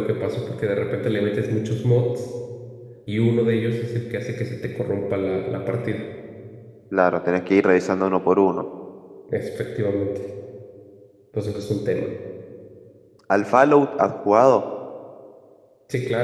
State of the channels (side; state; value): both; identical; correlation 1.00